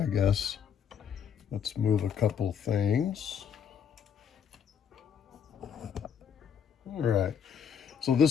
I guess. Let's move a couple things. All right. So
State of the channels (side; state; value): right; quieter; 7.7 dB